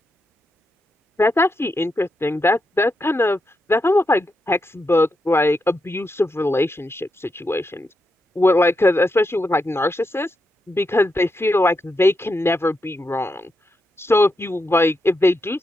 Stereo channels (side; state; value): both; normal; correlation 0.84